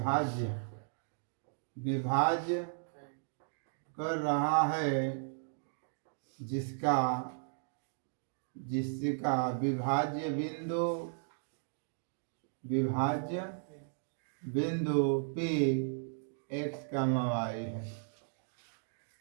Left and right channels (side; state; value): left; silent; digital silence